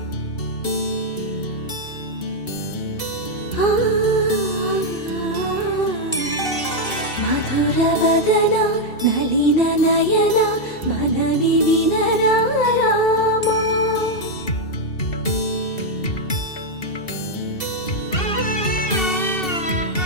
ಮಧುರ ವದನ ನಳಿನ ನಯನ ಮನವಿ ವಿನರ ರಾಮ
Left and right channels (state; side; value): late; right; 2.7 ms